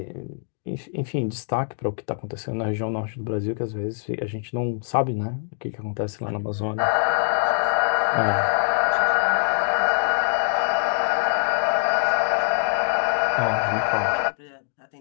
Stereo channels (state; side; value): silent; right; digital silence